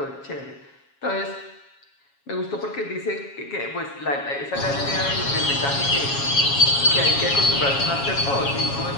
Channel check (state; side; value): late; right; 7.3 ms